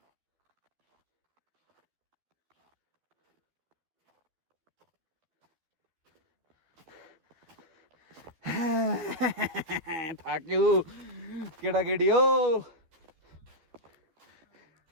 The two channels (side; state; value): left; late; 13 ms